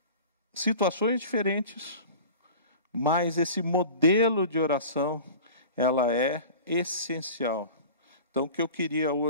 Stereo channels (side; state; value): both; inverted; correlation -0.39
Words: situações diferentes, mas esse modelo de oração, ela é essencial. Então, o que eu queria